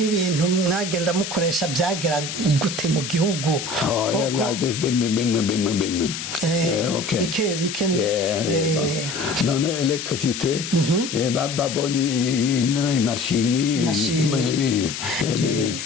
mwagenda mukoresha byagera gute mu gihugu bike none electricité babonye imashini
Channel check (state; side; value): noise; left; hiss, 7 dB below the sound